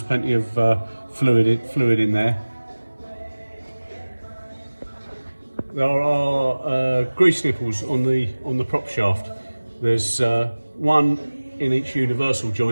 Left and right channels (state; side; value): inverted; both; correlation -1.00